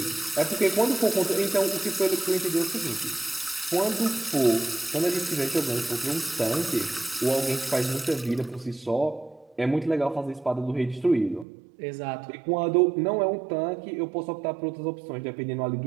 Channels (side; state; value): left; drops out; at 11.5 s